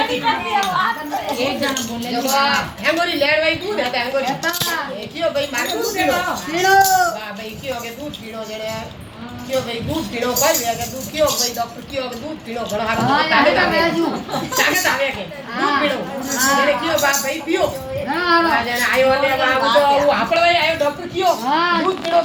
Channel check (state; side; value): identical; both; correlation 1.00